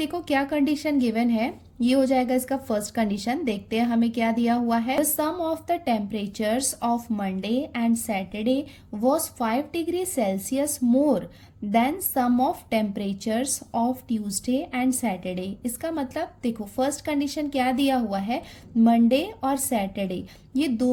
क्या कंडीशन गिवन है, ये हो जाएगा इसका फर्स्ट कंडीशन। देखते हैं हमें क्या दिया हुआ है, the sum of the temperatures of Monday and Saturday was 5 degree Celsius more than sum of temperatures of Tuesday and Saturday. इसका मतलब देखो फर्स्ट कंडीशन क्या दिया हुआ है, मंडे और सैटरडे ये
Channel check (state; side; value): identical; both; correlation 1.00